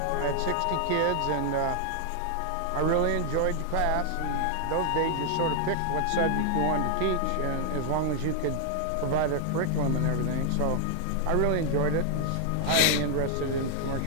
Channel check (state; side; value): different; both; correlation 0.00